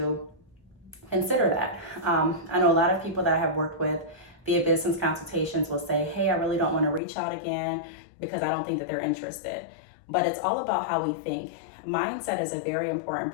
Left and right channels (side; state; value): right; drops out; at 7.0 s